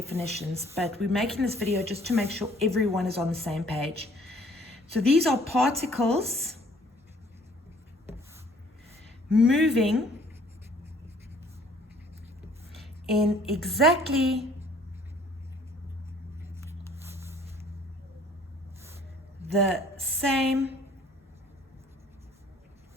but we're making this video just to make sure everyone is on the same page. So these are particles moving in exactly the same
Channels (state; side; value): normal; both; correlation 0.57